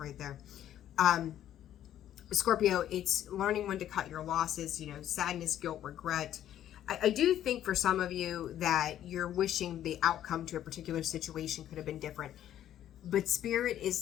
there. Scorpio, it's learning when to cut your losses, sadness, guilt, regret. I do think for some of you that you're wishing the outcome to a particular situation could have been different. But Spirit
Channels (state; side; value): quieter; right; 11.5 dB